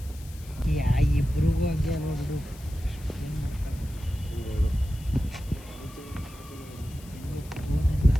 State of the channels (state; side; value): noise; left; hiss, 21 dB below the sound